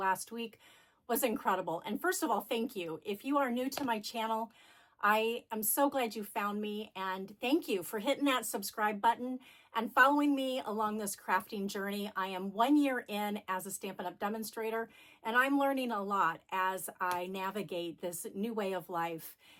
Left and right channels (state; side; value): identical; both; correlation 1.00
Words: week was incredible. And first of all, thank you. If you are new to my channel, I am so glad you found me, and thank you for hitting that subscribe button and following me along this crafting journey. I am 1 year in as a Stampin' Up! Demonstrator, and I'm learning a lot as I navigate this new way of life